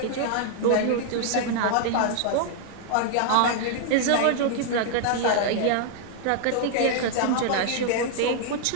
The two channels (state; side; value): different; both; correlation -0.01